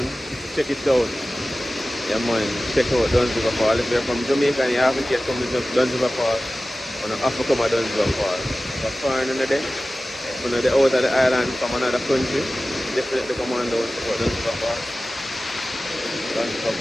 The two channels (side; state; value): both; normal; correlation 0.96